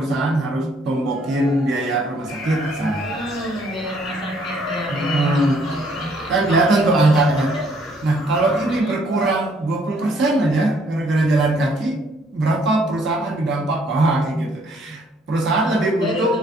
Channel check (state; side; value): normal; both; correlation 0.65